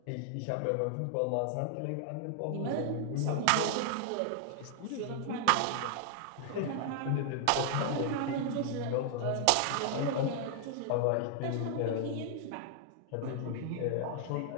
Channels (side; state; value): both; different; correlation 0.00